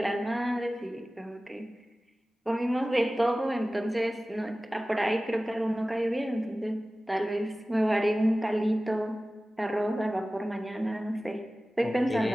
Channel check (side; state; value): both; normal; correlation 0.97